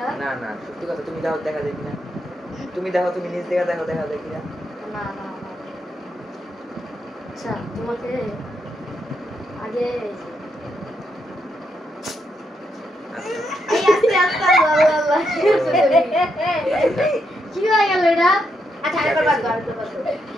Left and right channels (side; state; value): both; normal; correlation 0.80